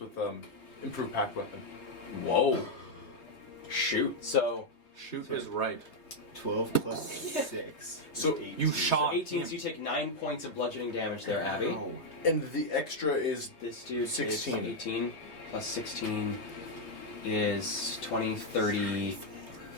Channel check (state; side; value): late; right; 3.2 ms